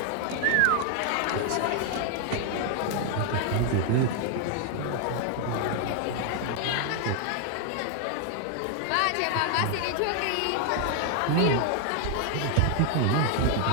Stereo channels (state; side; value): different; both; correlation 0.00